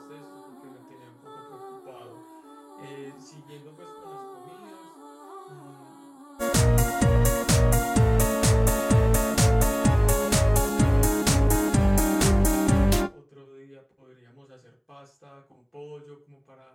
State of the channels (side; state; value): both; identical; correlation 1.00